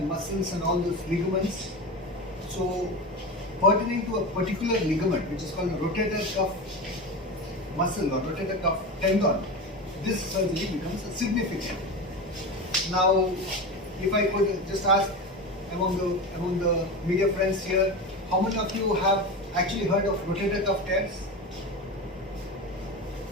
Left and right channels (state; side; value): normal; both; correlation 0.24